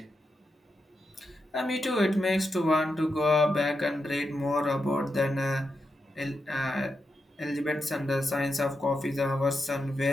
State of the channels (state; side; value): normal; both; correlation 0.86